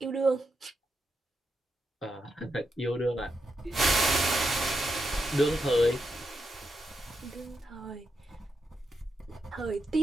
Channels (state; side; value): normal; both; correlation 0.84